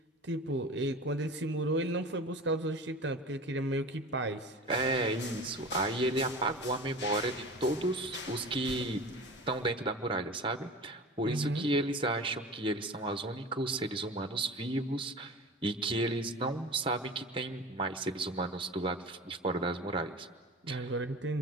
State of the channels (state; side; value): normal; both; correlation 0.36